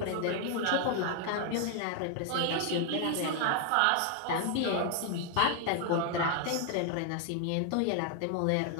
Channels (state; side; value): different; both; correlation 0.00